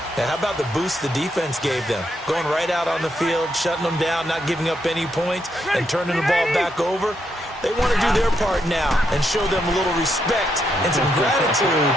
And how about the boost the defense gave them? Going right out on the field, shutting them down, not giving up any points, and turning the ball back over. They want to do their part now and show them a little respect and some gratitude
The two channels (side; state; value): both; normal; correlation 0.79